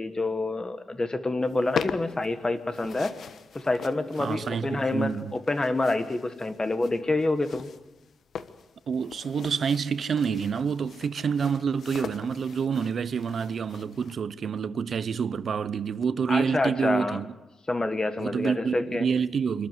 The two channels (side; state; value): both; normal; correlation 0.86